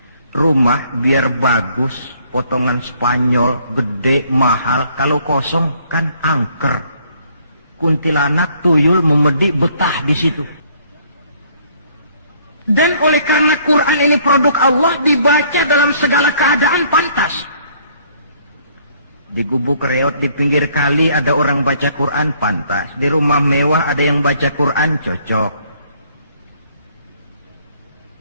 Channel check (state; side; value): inverted; both; correlation -0.63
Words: Rumah biar bagus, potongan Spanyol, gede, mahal, kalau kosong kan angker. Kuntilanak, tuyul, memedi, betah di situ. Dan oleh karena Quran ini produk Allah, dibaca dalam segala keadaan pantas. Di gubuk reot di pinggir kali ada orang baca Quran, pantas. Di rumah mewah ada yang baca Quran, cocok.